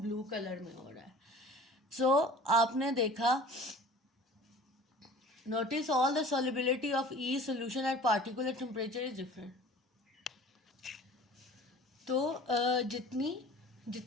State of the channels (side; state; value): both; normal; correlation 0.44